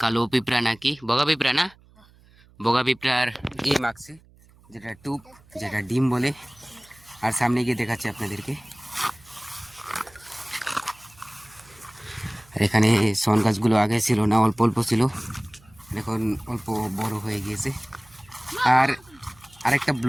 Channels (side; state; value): right; noise; hum, 28 dB below the sound